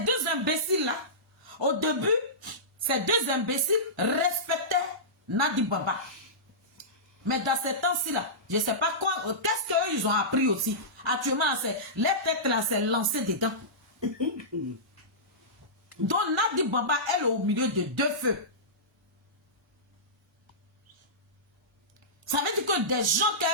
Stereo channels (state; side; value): normal; both; correlation -0.18